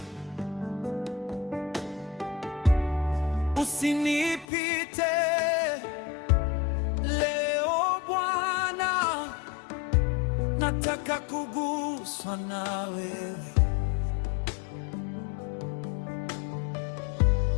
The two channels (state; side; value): drops out; right; at 4.5 s